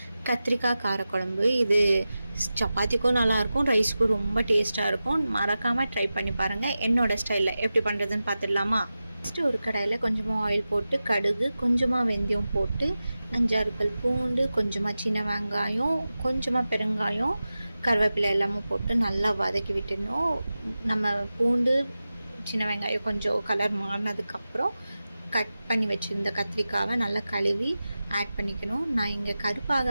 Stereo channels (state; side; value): inverted; both; correlation -0.94